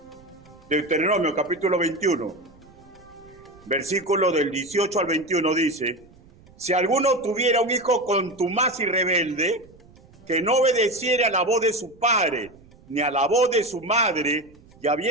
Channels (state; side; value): noise; right; rumble, 26 dB below the sound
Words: Deuteronomio capítulo 21, versículo del 18 al 21 dice: si alguno tuviera un hijo contumaz y rebelde, que no obedeciera a la voz de su padre, ni a la voz de su madre, y